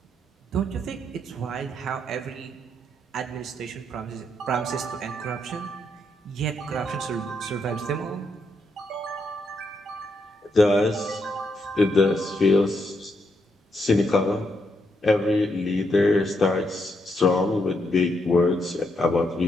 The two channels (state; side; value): normal; both; correlation 0.79